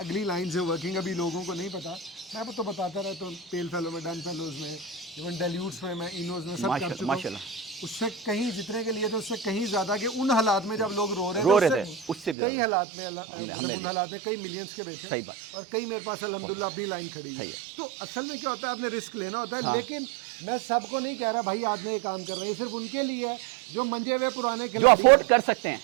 अगली लाइन से वर्किंग, अभी लोगों को नहीं पता, मैं तो बताता रहता हूँ, पेल फेलो में, डन फेलोज में, इवन डेल्यूट्स में, मैं इनोज में सब कर चुका हूँ। उससे कहीं जितने के लिए तो उससे कहीं ज़्यादा कि उन हालात में जब लोग रो रहे थे उससे कई हालात में उन हालात में कई मिलियंस के बेचे। सही बात। और कई मेरे पास अल्हम्दुलिल्लाह अपनी लाइन खड़ी है। तो असल में क्या होता है, आपने रिस्क लेना होता है। लेकिन मैं सबको नहीं कह रहा भाई आज ये काम कर रहे हैं, सिर्फ उनके लिए है जो मंजे हुए पुराने जो अफोर्ड कर सकते हैं,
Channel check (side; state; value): left; drops out; at 12.4 s